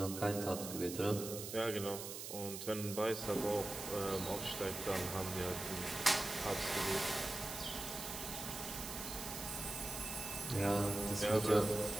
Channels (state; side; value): noise; right; hiss, 7 dB below the sound